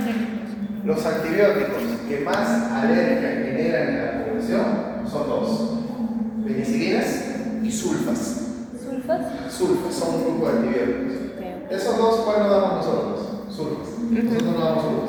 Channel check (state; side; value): identical; both; correlation 1.00